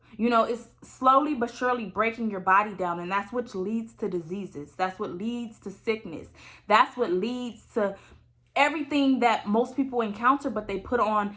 You know, it's slowly but surely breaking your body down, and that's what leads to diseases. That's what leads to sickness. That's what leads to everything that most people encounter, but they put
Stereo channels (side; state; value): both; identical; correlation 1.00